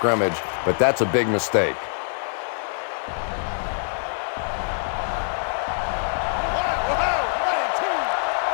but that's a big mistake.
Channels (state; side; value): silent; right; 62 dB below the other